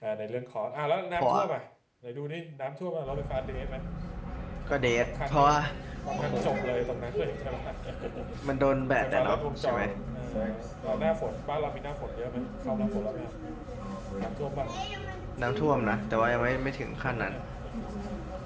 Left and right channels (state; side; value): identical; both; correlation 1.00